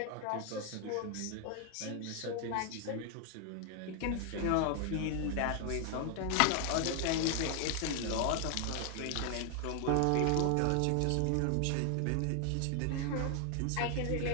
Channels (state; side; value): different; both; correlation 0.00